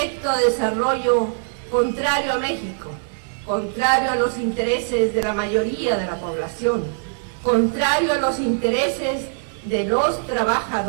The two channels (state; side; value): silent; left; digital silence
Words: de desarrollo contrario a México, contrario a los intereses de la mayoría de la población, contrario a los intereses de los